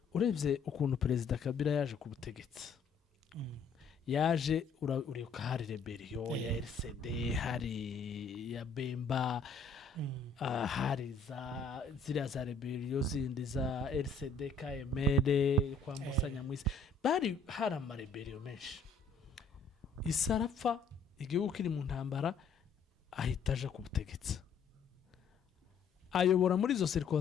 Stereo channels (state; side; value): quieter; right; 4.5 dB